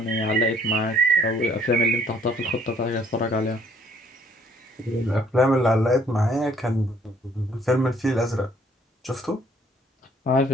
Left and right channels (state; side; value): normal; both; correlation 0.62